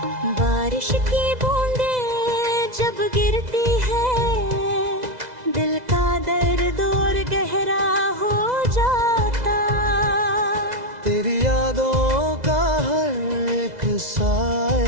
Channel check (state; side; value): late; left; 2.0 ms